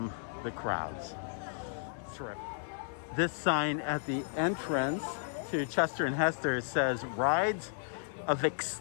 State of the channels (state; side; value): silent; right; digital silence